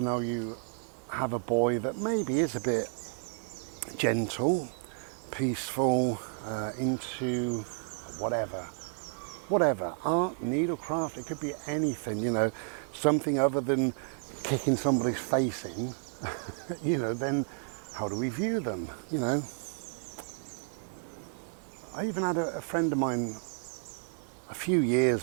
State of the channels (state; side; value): silent; left; 57 dB below the other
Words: now you have a boy that maybe is a bit gentle, peaceful, into whatever, art, needlecraft, it could be anything, something other than kicking somebody's face in, then how do we view them, I even had a friend of mine a few